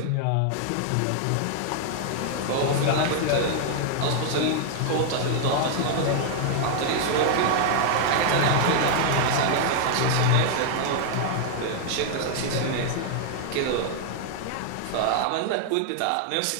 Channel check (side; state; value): both; different; correlation 0.00